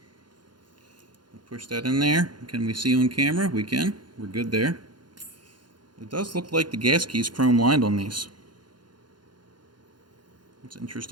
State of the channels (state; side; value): late; left; 0.71 ms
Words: Push that in there. Can we see on camera? We can. We're good there. It does look like the gas key is chrome lined on these. That's